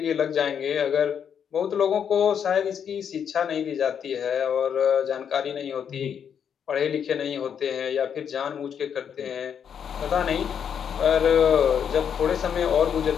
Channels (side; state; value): right; quieter; 7.9 dB